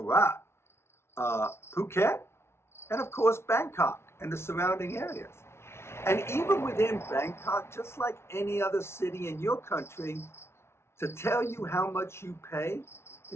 Phuket, and of course Bangkok and the surrounding areas. And even within Bangkok, just like any other city in your country, to tell you how much you pay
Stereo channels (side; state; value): right; late; 0.12 ms